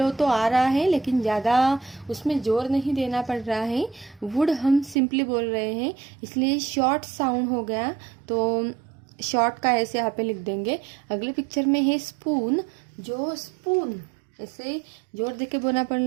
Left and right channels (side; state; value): left; drops out; at 5.0 s